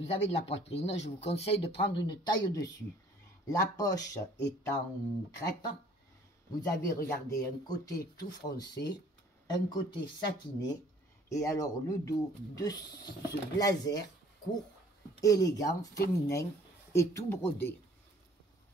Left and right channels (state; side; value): normal; both; correlation 0.56